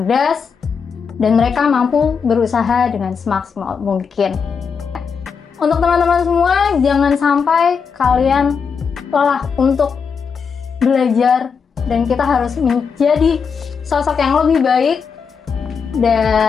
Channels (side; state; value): right; quieter; 6.0 dB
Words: dan mereka mampu berusaha dengan semaksimal mungkin. Untuk teman-teman semua, jangan sampai kalian lelah untuk belajar, dan kita harus menjadi sosok yang lebih baik